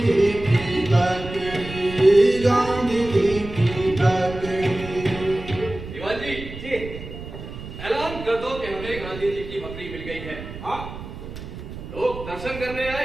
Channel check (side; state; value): right; noise; rumble, 11 dB below the sound